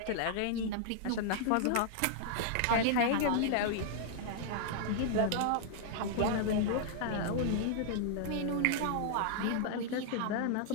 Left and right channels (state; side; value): different; both; correlation -0.01